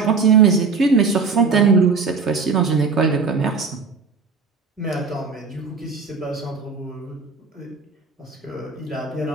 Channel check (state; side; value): quieter; left; 4.8 dB